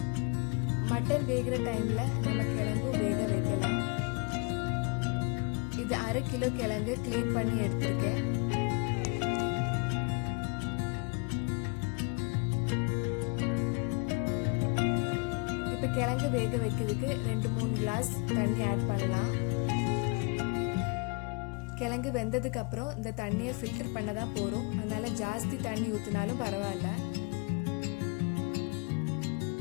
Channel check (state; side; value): quieter; right; 31.9 dB